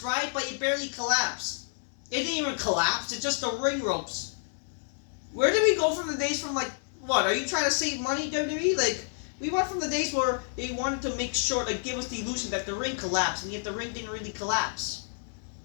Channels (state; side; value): silent; right; digital silence